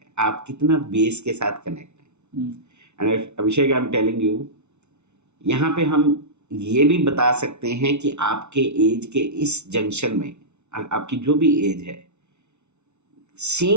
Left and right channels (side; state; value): left; late; 0.82 ms